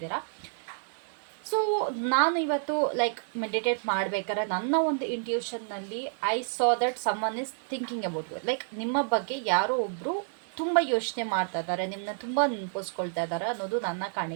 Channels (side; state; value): left; silent; digital silence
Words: ಸೊ ನಾನು ಇವತ್ತು ಮೆಡಿಟೇಟ್ ಮಾಡಬೇಕಾದ್ರೆ ನನ್ನ ಒಂದು ಇಂಟ್ಯೂಷನ್ನಲ್ಲಿ I saw that someone is thinking about you. ನಿಮ್ಮ ಬಗ್ಗೆ ಯಾರೋ ಒಬ್ಬರು ತುಂಬ ಯೋಚನೆ ಮಾಡ್ತಾ ಇದ್ದಾರೆ, ನಿಮ್ಮನ್ನ ತುಂಬ ನೆನಪಿಸ್ಕೊಳ್ತಾ ಇದ್ದಾರೆ ಅನ್ನೋದು ನನ್ನ